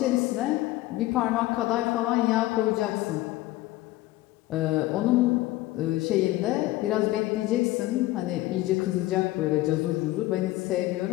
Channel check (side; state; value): right; quieter; 17.4 dB